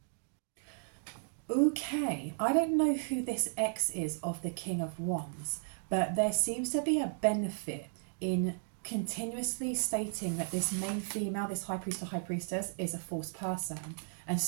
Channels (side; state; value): left; silent; digital silence